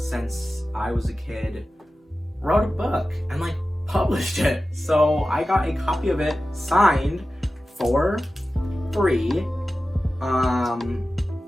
I was a kid wrote a book and like published it. So I got a copy of it signed for free.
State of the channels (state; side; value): normal; both; correlation 0.94